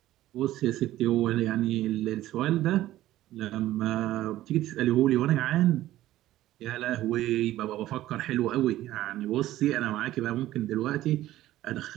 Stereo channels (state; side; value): quieter; left; 14.7 dB